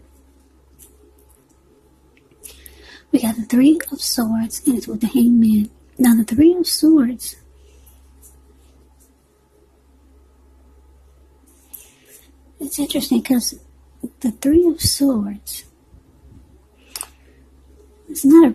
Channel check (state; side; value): identical; both; correlation 1.00